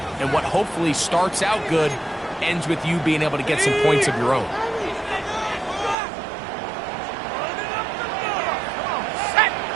and what hopefully starts out good ends with you being able to get some points of your own.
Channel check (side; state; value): left; drops out; at 6.0 s